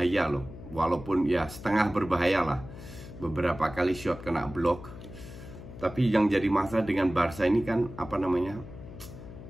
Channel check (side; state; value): left; noise; hum, 14 dB below the sound